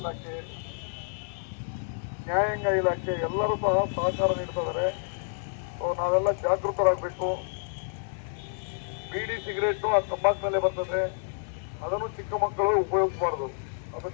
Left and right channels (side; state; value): right; silent; 59 dB below the other